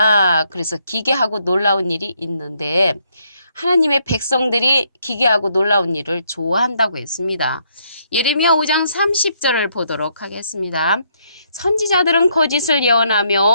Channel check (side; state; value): both; inverted; correlation -0.72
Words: 그래서 기괴하고 놀라운 일이 있는데 하나님의 백성들이 기괴하고 놀라운 일을 좋아한다고 했습니다. 예레미야 5장 30절을 보도록 하겠습니다. 선지자들은 거짓을